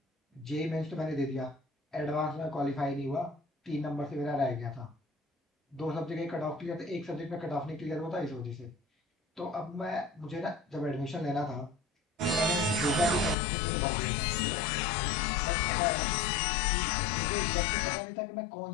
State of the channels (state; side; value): drops out; right; at 13.4 s